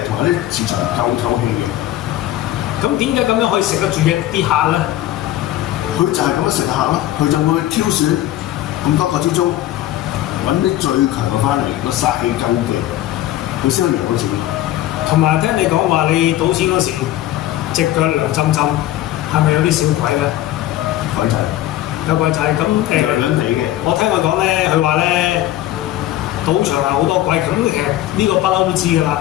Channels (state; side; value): quieter; right; 14.1 dB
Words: 同埋啲磁場夠透氣嘅。咁點解咁樣可以食得住嘅啲客咧？佢就係咁樣食客啦，佢就會挑選咁多個之中揾啲最強嘅翻嚟，個煞氣夠勁，佢先可以贏到錢。同埋聽你講話，你賭錢嗰時隻腳涼浸浸，係咪有啲小鬼咧？鬼仔，有鬼仔咁涼涼地嘅。我聽佢講咧，佢話咧賭場係好多鬼，咁其實呢個不嬲都知㗎啦。